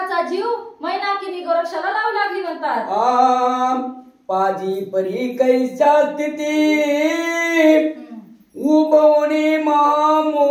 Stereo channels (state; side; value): identical; both; correlation 1.00